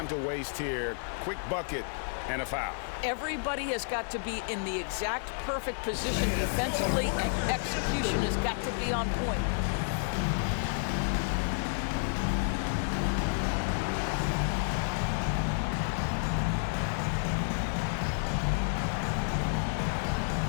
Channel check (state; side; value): silent; right; digital silence